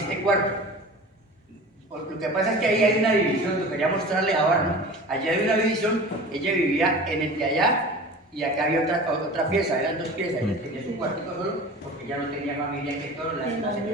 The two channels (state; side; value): normal; both; correlation 0.37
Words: cuarto. Lo que pasa es que ahí hay una división, lo quería mostrarle ahora, ¿no? Allá hay una división, ella vivía en el de allá y acá había otra pieza, eran dos piezas. Ella tenía su cuartito solo porque ella no tenía familia que todo, la